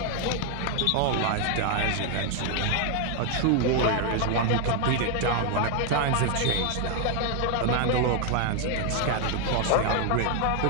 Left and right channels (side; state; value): both; different; correlation 0.00